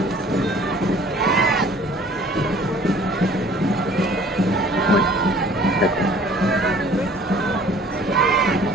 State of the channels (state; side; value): normal; both; correlation 0.52